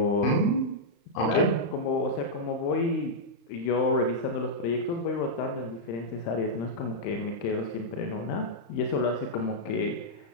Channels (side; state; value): right; late; 35 ms